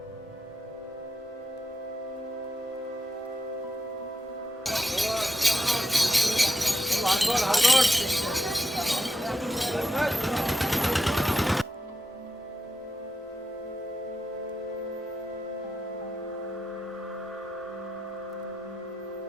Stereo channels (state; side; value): normal; both; correlation 0.87